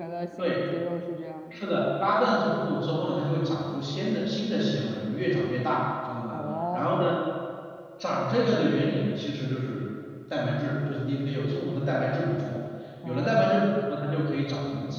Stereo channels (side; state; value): both; identical; correlation 1.00